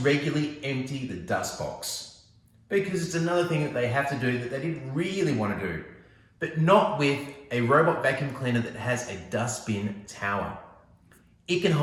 empty the dust box, because it's another thing that they have to do that they didn't really want to do, but not with a robot vacuum cleaner that has a dustbin tower. It can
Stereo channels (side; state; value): both; identical; correlation 1.00